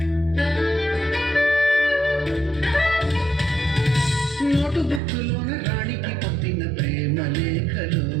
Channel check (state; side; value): drops out; left; at 5.0 s